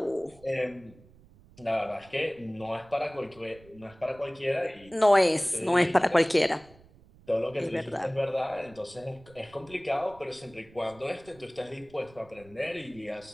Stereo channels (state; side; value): noise; right; rumble, 25 dB below the sound